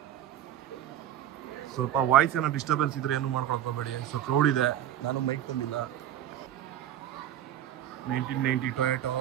ಸ್ವಲ್ಪ ವಾಯ್ಸ್ ಏನೋ ಡಿಸ್ಟರ್ಬೆನ್ಸ್ ಇದ್ರೆ ಏನು ಮಾಡ್ಕೊಳಕ್ಕೆ ಹೋಗಬೇಡಿ. ಸೊ ಕ್ರೌಡ್ ಇದೆ, ನಾನು ಮೈಕ್ ತಂದಿಲ್ಲ. 1990 ಟೊಯೋಟೋ,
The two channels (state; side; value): quieter; left; 11.5 dB